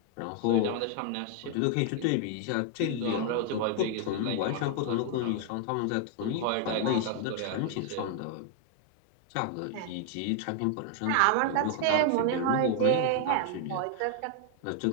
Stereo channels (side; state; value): both; different; correlation 0.00